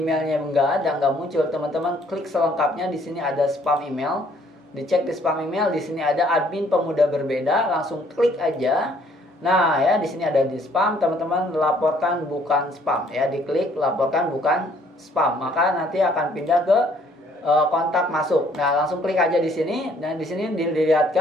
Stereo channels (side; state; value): both; normal; correlation 0.62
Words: nggak muncul, teman-teman klik selengkapnya. Di sini ada spam email. Dicek di spam email, di sini ada admin Pemuda Berbeda, langsung klik aja. Nah ya, di sini ada di spam, teman-teman laporkan bukan spam ya, diklik laporkan bukan spam, maka nanti akan pindah ke kontak masuk. Nah, langsung klik aja di sini. Dan di sini